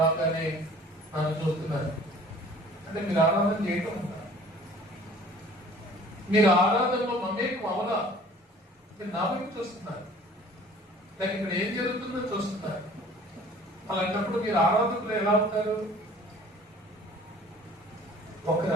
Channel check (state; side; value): normal; both; correlation 0.50